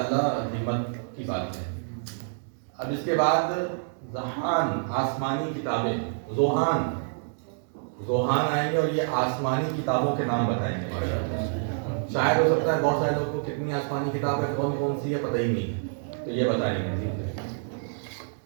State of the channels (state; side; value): silent; left; digital silence